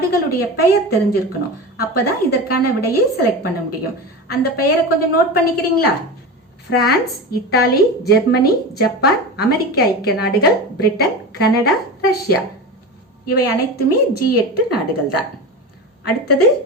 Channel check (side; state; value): both; normal; correlation 0.26